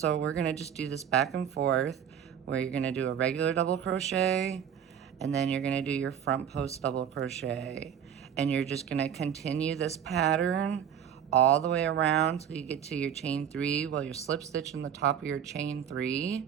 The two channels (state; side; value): quieter; left; 8.8 dB